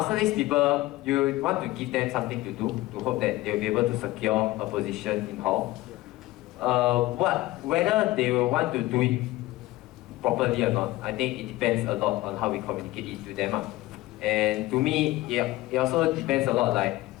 people, you want to give them something to do to hope that they'll be able to secure a position in hall. Whether they will want to do it properly or not, I think it depends a lot on how we communicate it to them. And to me, it also depends a lot like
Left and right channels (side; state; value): right; quieter; 18.2 dB